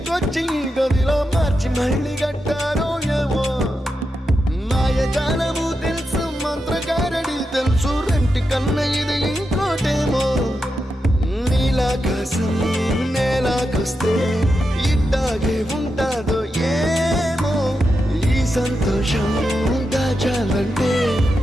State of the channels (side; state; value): both; normal; correlation 0.87